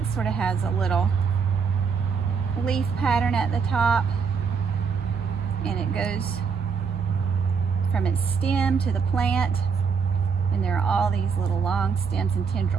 sort of has a little leaf pattern at the top. And it goes from its stem to the plant. And there are all these little long stems and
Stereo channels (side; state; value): left; quieter; 5.8 dB